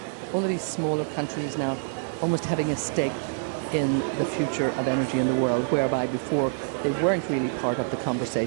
all of these smaller countries now almost having a stake in the future of energy in the world, whereby before they weren't really part of the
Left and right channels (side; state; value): left; silent; digital silence